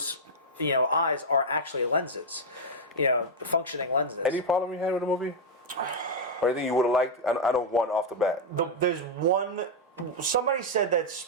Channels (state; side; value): normal; both; correlation -0.01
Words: eyes are actually lenses, functioning lenses. Any problem you had with the movie? Or anything you would have liked? I don't want off the bat. There's one. Somebody said that